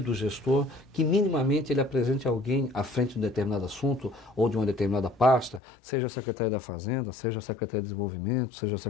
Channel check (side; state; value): right; drops out; at 5.6 s